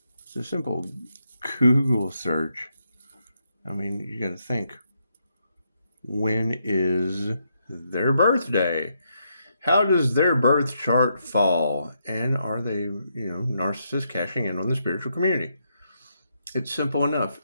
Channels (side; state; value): both; inverted; correlation -0.79